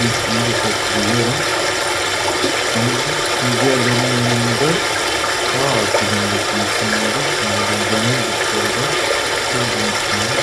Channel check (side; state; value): both; identical; correlation 1.00